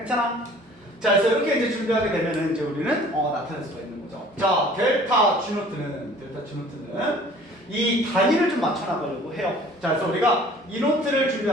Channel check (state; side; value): normal; both; correlation 0.50